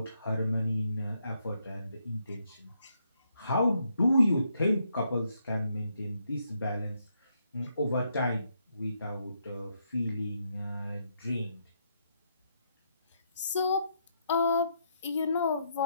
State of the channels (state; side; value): inverted; both; correlation -0.77